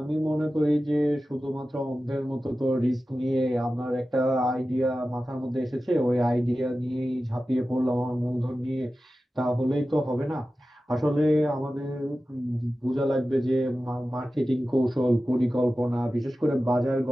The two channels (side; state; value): both; normal; correlation 0.94